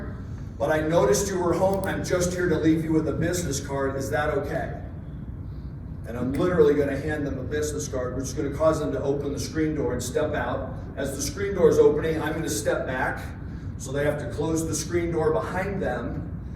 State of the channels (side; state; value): both; identical; correlation 1.00